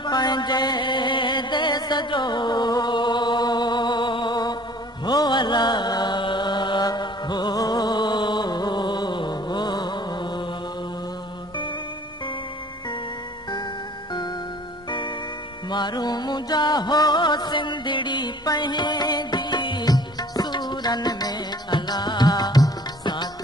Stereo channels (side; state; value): both; normal; correlation 0.51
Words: पंहिंजे देस जो हो अला हो मारू मुंहिंजा हो सिंधड़ी पंहिंजी सूरन में अला साथ